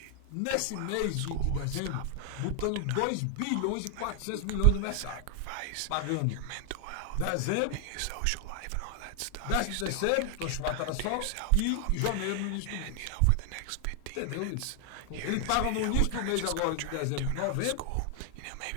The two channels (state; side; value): different; both; correlation 0.00